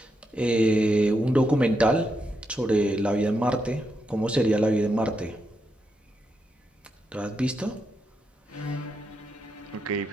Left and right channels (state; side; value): normal; both; correlation 0.83